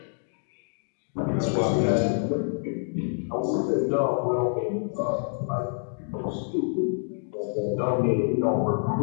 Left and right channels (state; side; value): silent; right; digital silence